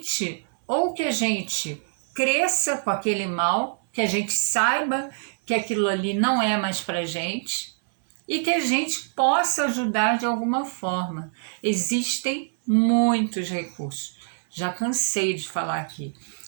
ou que a gente cresça com aquele mal, que a gente saiba que aquilo ali não é mais para a gente e que a gente possa ajudar de alguma forma. Existem muitos recursos. Já cansei de falar aqui.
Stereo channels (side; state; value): left; silent; 62 dB below the other